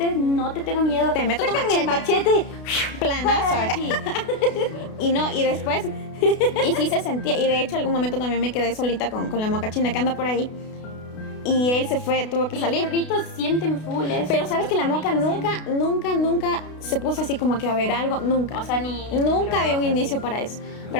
no te tengo miedo. Te meto tu Sácame el machete. Planazo, Sí. Y después, y sí se sentía, y de hecho algún momento también me quedé solita con la mocachina que anda por ahí. Y él se fue, tuvo que Y salir. los perritos sienten full eso. Pero sabes que la moca nunca se puso así como que a ver algo, nunca. O sea, ni... Nunca dio un indicio para eso.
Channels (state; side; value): late; right; 32 ms